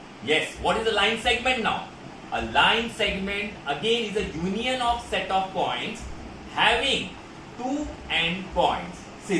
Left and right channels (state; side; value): identical; both; correlation 1.00